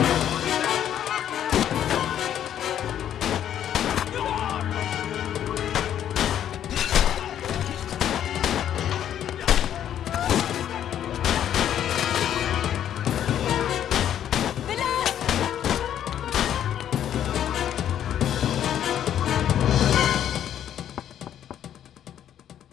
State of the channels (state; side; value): quieter; right; 10.3 dB